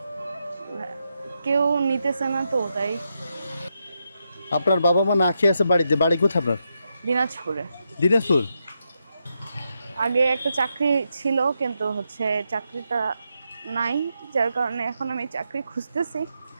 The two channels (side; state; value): both; inverted; correlation -0.84